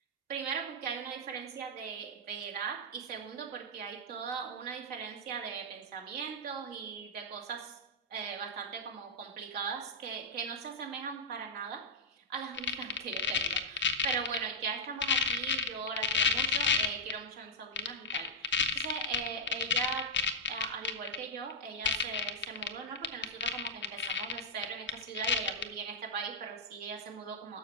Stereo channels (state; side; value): normal; both; correlation -0.07